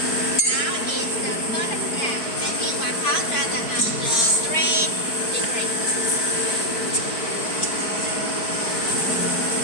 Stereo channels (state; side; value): late; right; 4.6 ms